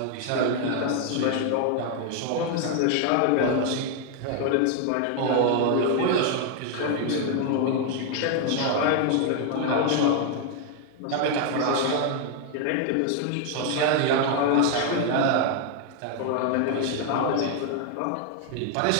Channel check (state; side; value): different; both; correlation 0.00